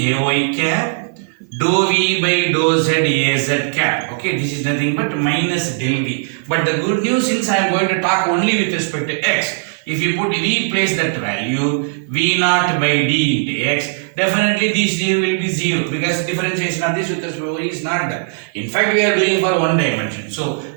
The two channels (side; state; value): left; silent; 55 dB below the other